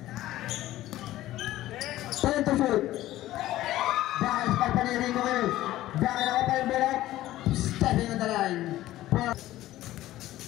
10 to shoot. Bakit pagpanirin mo ngayon? Bakit ako pa yung bola? Stepping on the line.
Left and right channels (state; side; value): quieter; right; 15.2 dB